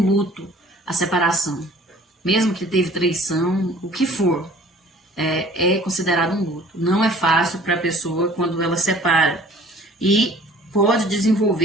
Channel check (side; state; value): both; normal; correlation 0.51